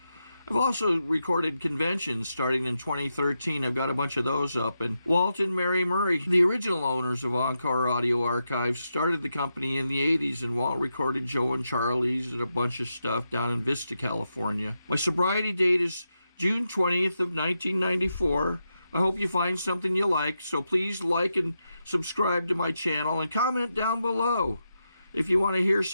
also recorded conventions starting in 2013. I've got a bunch of those up. And Walt and Mary Murray, the original owners of Encore Audio Archives, started the company in the 80s, and Walt recorded Joe and Charlie's and a bunch of stuff down in Vista, California. My sobriety date is June 20th of 1994. I hope you find something you like, so please like and subscribe to my channel and comment down below. If you want to hear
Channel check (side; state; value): both; inverted; correlation -0.86